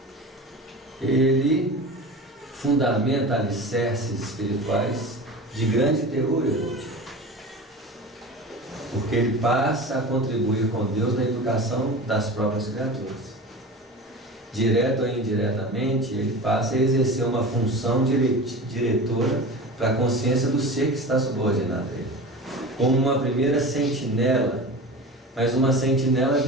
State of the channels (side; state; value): both; normal; correlation 0.32